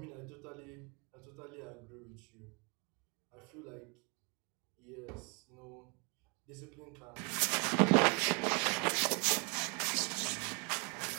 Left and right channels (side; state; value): left; quieter; 31.8 dB